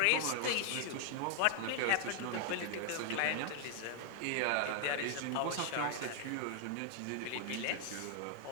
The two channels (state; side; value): different; both; correlation 0.00